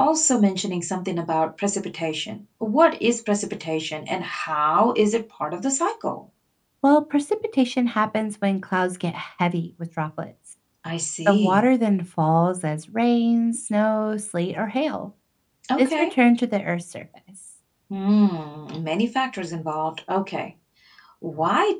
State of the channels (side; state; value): both; identical; correlation 1.00